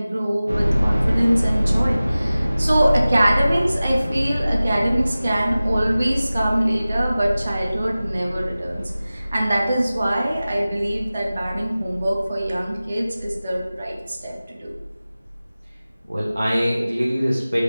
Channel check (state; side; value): inverted; both; correlation -0.97